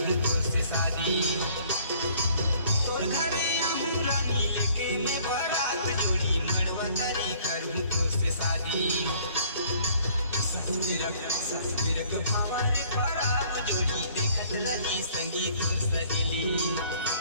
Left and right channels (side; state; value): both; inverted; correlation -0.58